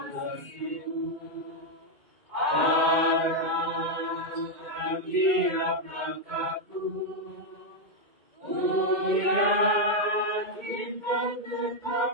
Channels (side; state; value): left; late; 1.8 ms